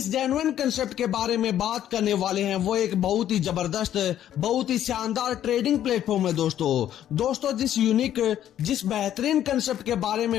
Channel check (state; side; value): quieter; right; 11.2 dB